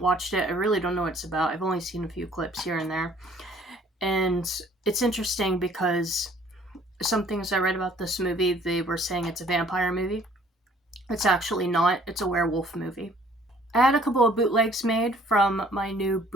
watched it. I really don't know what it's about. I've only seen a few clips here and there. And it's interesting because some things I read about this movie, they were saying it's a vampire movie. It's actually not. It's a werewolf movie. I had a couple of bootlegs made from my new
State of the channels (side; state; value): both; normal; correlation 0.57